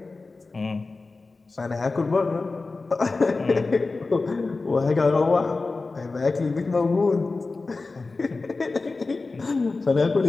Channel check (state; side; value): quieter; right; 3.7 dB